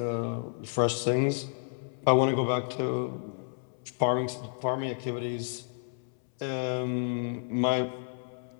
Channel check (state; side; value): silent; right; 57 dB below the other